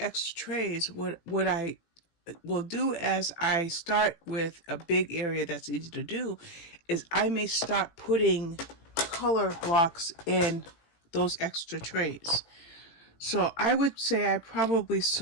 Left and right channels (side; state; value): right; late; 18 ms